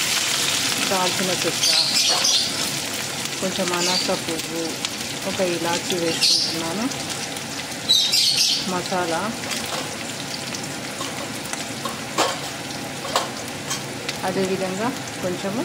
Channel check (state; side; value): identical; both; correlation 1.00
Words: దాల్చిన చెక్క, కొంచెం అనాస పువ్వు, ఒక ఇలాచీ వేసుకుంటున్నాను, మసాలా, అదేవిధంగా కొంచెము